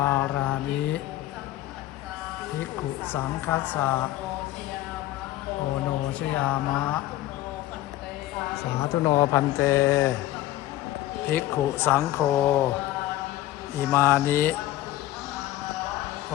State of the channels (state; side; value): quieter; right; 15.2 dB